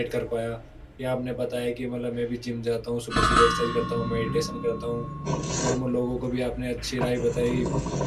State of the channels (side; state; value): both; identical; correlation 1.00